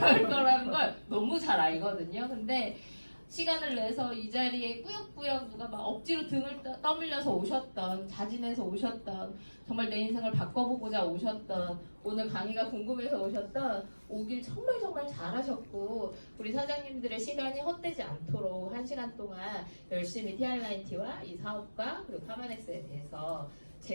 거라는 걸 너무 잘 알거든요. 근데 시간을 내서 이 자리에 꾸역꾸역 누가 막 억지로 등을 떠밀려서 오셨던, 자진해서 오셨던, 정말 내 인생을 바꿔보고자 오셨던, 오늘 강의가 궁금해서 오셨던, 오길 정말 잘하셨고 우리 사장님들의 시간이 헛되지 않도록 1시간 동안 열심히 TR라인T와 이 사업과 그리고 파마넥스에 대해서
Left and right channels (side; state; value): both; inverted; correlation -1.00